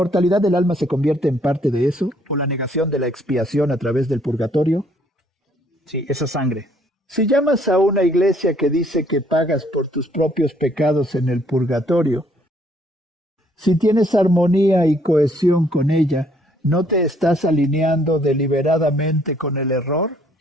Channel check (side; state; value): both; normal; correlation 0.65